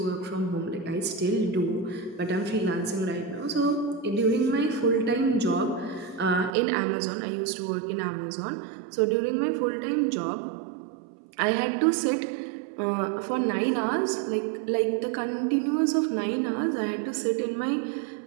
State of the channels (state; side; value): drops out; left; at 6.6 s